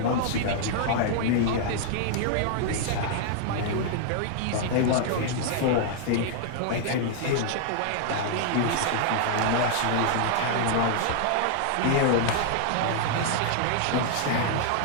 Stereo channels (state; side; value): different; both; correlation -0.01